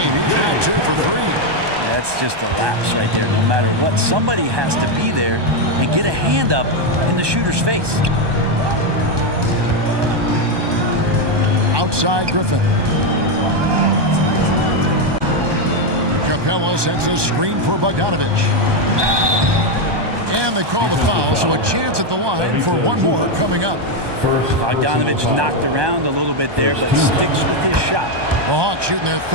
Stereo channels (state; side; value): late; left; 1.2 ms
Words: He's now 2 for 3. That's just a lapse right there. No matter what, somebody has to be there and get a hand up in the shooter's face. Outside Griffin. Capella sets a screen for Bogdanovich. And they call the foul, so a chance at the line for one more coming up. Bogdanovich knocked around a little bit there, but sticks with his shot. The Hawks shooting their